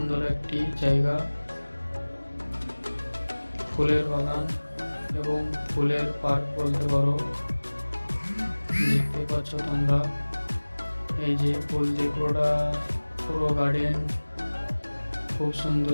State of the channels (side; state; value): both; inverted; correlation -1.00